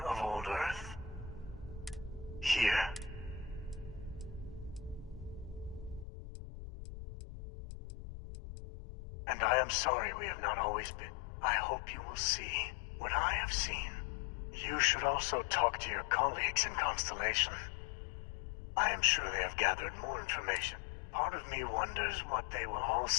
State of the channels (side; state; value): right; drops out; at 6.1 s